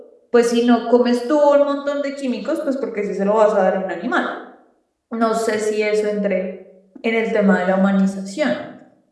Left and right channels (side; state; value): both; identical; correlation 1.00